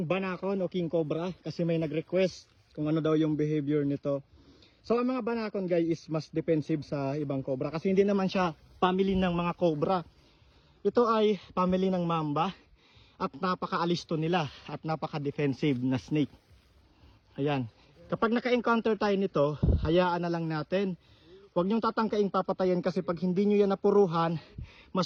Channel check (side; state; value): both; identical; correlation 1.00